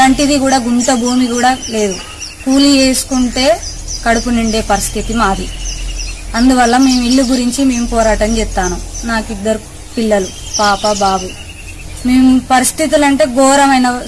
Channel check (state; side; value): identical; both; correlation 1.00